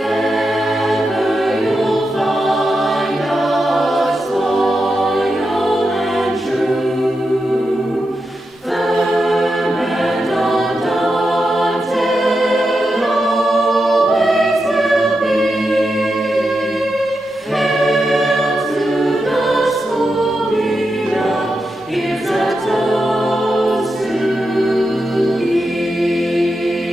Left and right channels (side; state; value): both; normal; correlation 0.88